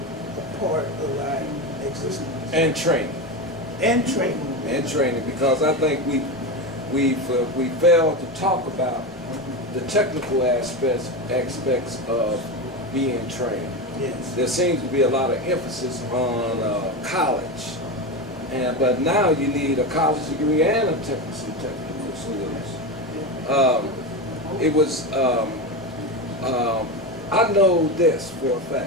part of our existence. And training. And training. And training, because I think we failed to talk about the technical aspects of being trained. Yes. There seems to be a lot of emphasis on college, but now you need a college degree and a technical skills. I know this for a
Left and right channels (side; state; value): both; normal; correlation 0.18